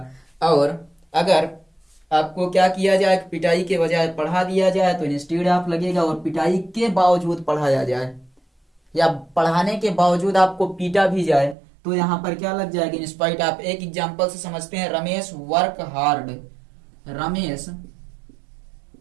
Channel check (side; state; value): left; drops out; at 11.6 s